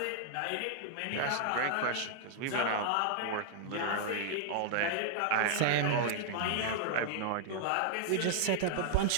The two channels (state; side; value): different; both; correlation -0.01